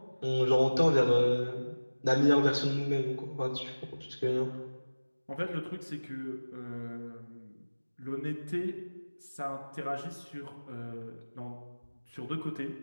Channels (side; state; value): both; inverted; correlation -1.00